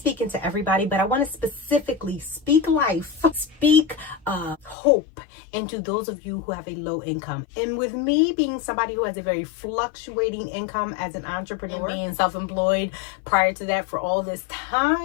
to everybody, but I want to specifically speak life, speak hope into those of you who have a low income. And with me being somebody who has a very fluctuating income as an entrepreneur, and being self-employed prior to that for all this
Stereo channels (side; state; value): right; drops out; at 4.8 s